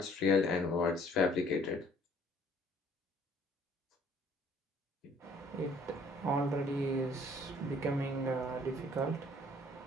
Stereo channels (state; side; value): normal; both; correlation 0.58